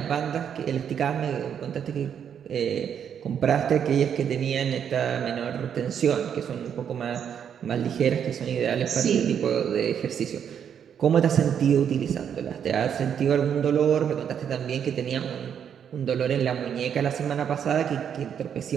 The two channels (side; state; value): left; quieter; 8.3 dB